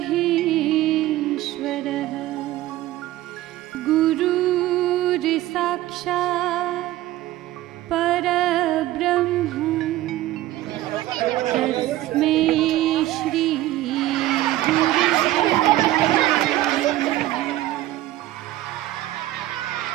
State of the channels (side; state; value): left; quieter; 15.6 dB